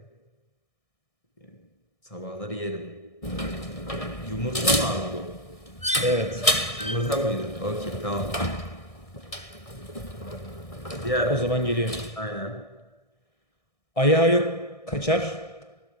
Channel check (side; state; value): right; late; 1.6 ms